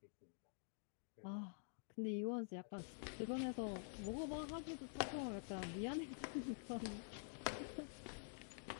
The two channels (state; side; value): silent; right; digital silence